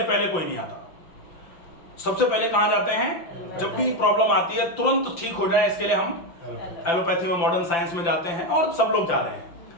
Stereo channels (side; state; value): right; late; 5.9 ms